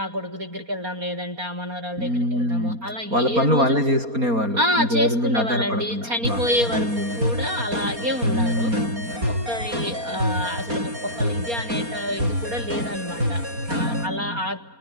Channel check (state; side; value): late; left; 4.3 ms